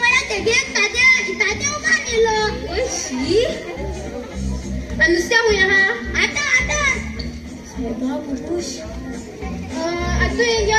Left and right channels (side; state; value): both; identical; correlation 1.00